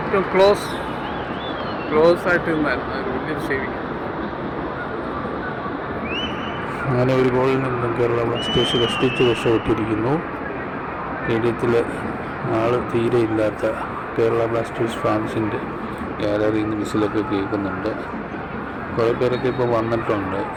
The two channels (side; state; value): both; identical; correlation 1.00